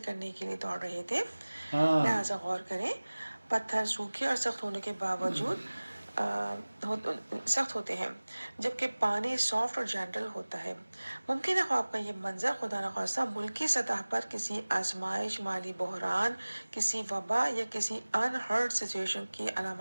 کرنے کے لیے دوڑ رہے تھے، لہٰذا غور کریں، پتھر سوکھے اور سخت ہونے کے باوجود سخت ہوتے ہیں، جبکہ پانی سافٹ اور جینٹل ہوتا ہے۔ ممکن ہے خواب کا یہ منظر خدا نخواستہ ملکی سطح پر کسی آزمائش، مالی بحران، کسی وبا یا کسی انہرڈ سچویشن کی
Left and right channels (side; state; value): both; inverted; correlation -1.00